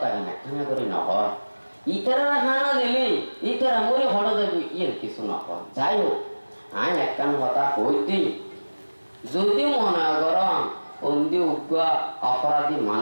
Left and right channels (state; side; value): inverted; both; correlation -1.00